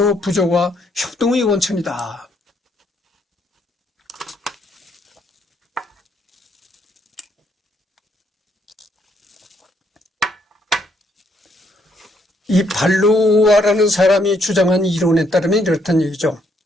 부조와 협동의 원천이다. 이 발로아라는 사람이 주장한 이론에 따르면 이렇다는 얘기죠.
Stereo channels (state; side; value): normal; both; correlation 0.71